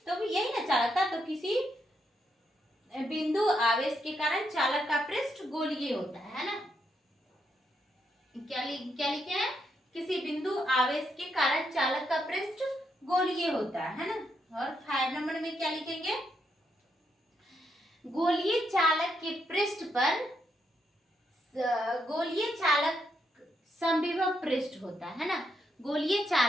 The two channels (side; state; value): both; normal; correlation 0.79